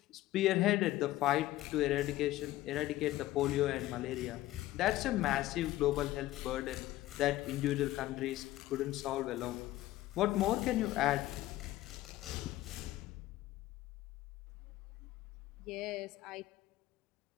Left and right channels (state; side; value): quieter; right; 15.9 dB